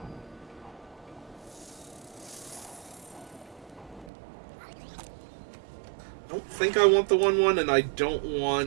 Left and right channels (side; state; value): left; drops out; at 4.1 s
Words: I don't think I want the 1/1, and I don't